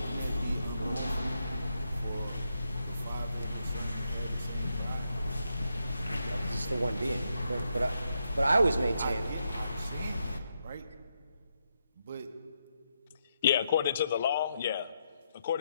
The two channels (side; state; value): both; inverted; correlation -0.81